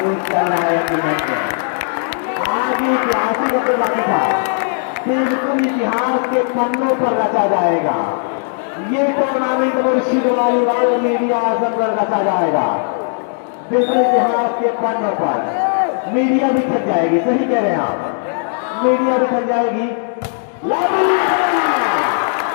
करना है आज ऐतिहासिक होकर बाकी था। बिल्कुल इतिहास के पन्नों पर रचा जाएगा। ये टूर्नामेंट मुर्शिद वालीबाल मीडिया आजम पर रचा जाएगा। बिल्कुल इतिहास के पन्नों पर मीडिया भी थक जाएगी। सही कह रहे हैं आप, मीडिया भी थक जाएगी।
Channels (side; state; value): right; silent; 68 dB below the other